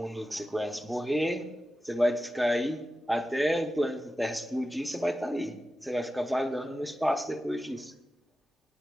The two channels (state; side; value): normal; both; correlation 0.93